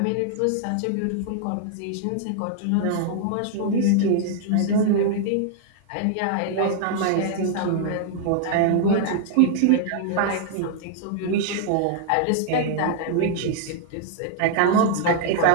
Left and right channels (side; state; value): both; different; correlation -0.01